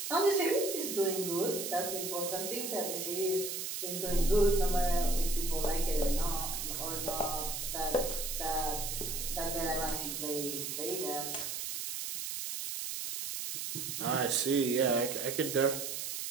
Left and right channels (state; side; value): noise; right; hiss, 4 dB below the sound